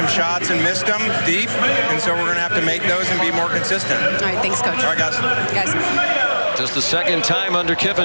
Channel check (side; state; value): both; inverted; correlation -1.00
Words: shots and missed them deep, and so we're going to have to make those and be more consistent. All right, thanks, Coach. All right, guys. Just the second time under